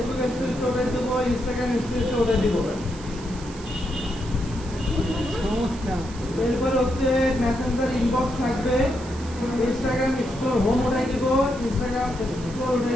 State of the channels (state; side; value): noise; right; hiss, 18 dB below the sound